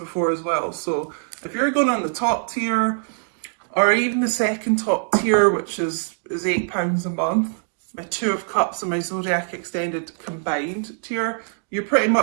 as well. So if you're going on the top tier, or even the second top tier, which is £8 a month, my Two of Cups and my Zodiac Extended combined tier, you're pretty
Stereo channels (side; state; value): left; silent; digital silence